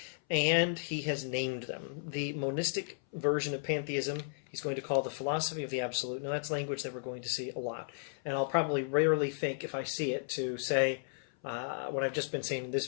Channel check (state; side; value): silent; right; 55 dB below the other